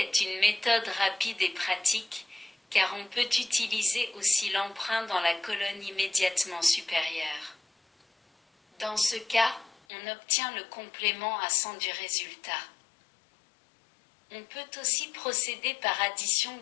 une méthode rapide et pratique, car on peut utiliser aussi l'emprunt dans la colonne immédiatement supérieure. Dans ce cas, on obtient le complément à 100 du résultat. On peut aussi procéder par addition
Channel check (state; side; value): drops out; right; at 9.8 s